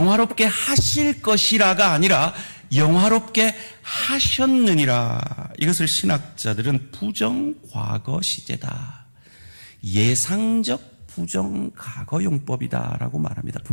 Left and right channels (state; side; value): inverted; both; correlation -1.00